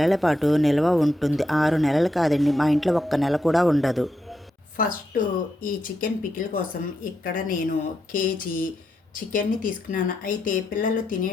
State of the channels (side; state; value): both; normal; correlation 0.83